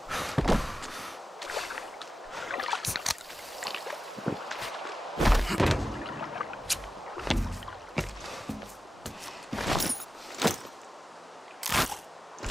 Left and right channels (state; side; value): normal; both; correlation 0.93